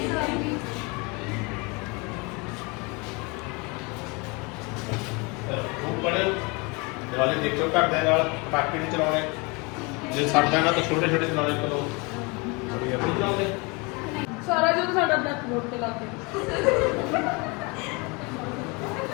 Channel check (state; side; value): quieter; right; 28.7 dB